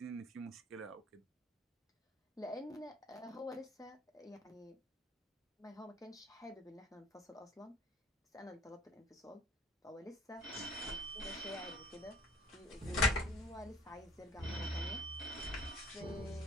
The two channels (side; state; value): both; normal; correlation 0.52